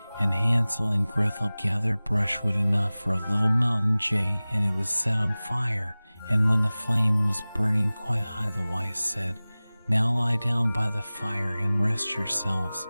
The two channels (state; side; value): inverted; both; correlation -0.99